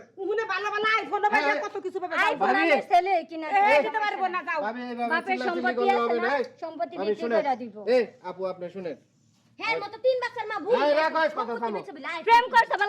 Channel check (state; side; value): identical; both; correlation 1.00